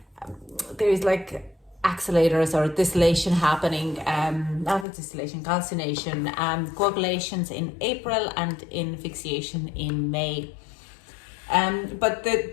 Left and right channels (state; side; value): drops out; right; at 4.9 s